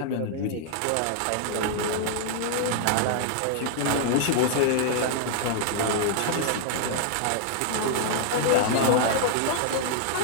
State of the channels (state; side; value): different; both; correlation -0.01